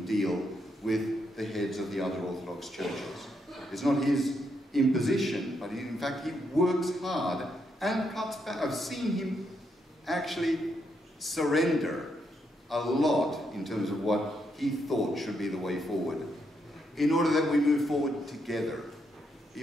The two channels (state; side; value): normal; both; correlation 0.79